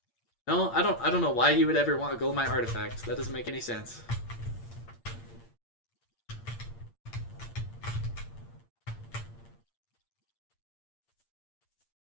No, I don't know why you would ever want a Golemite artifact. That doesn't make any sense.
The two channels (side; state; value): right; late; 8.7 ms